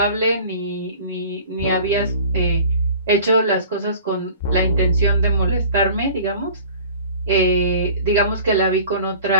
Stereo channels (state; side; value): inverted; both; correlation -0.45